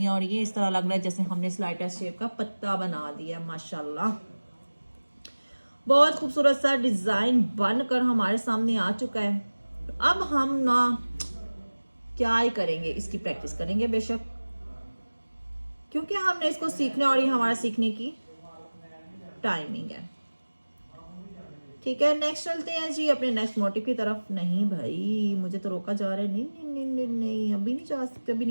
और ये इस तरह लग रहा है जैसे हमने स्लाइड टेस्ट शेप का पत्ता बना दिया। माशाल्लाह बहुत खूबसूरत सा डिज़ाइन बनकर हमारे सामने आ चुका है। अब हम ना क्या ही करेंगे, इसकी प्रैक्टिस करेंगे बेशक, क्योंकि हमने इसको सीखना और ये हमारा सीखने की टाइमिंग है, ठीक है। नेक्स्ट चलते हैं जी अपने नेक्स्ट मोटिव की तरफ। नहीं भाई मुझे तो रोका जा रहा है, नहीं नहीं नहीं नहीं, नहीं अभी नहीं जा सकते, अभी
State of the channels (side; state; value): both; inverted; correlation -1.00